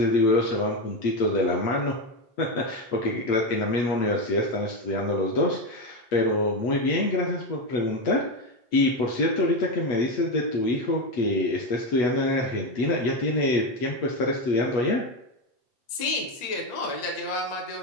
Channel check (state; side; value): late; right; 8.5 ms